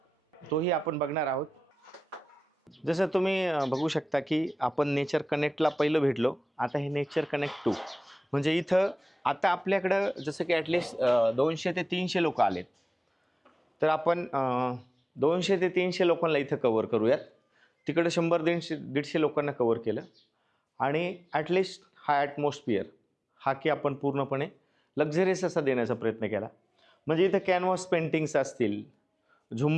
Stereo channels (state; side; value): normal; both; correlation 0.97